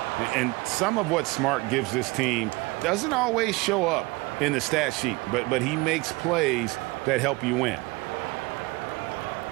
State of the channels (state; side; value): quieter; left; 23.8 dB